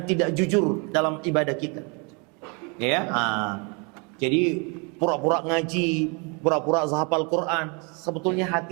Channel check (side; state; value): left; quieter; 32.6 dB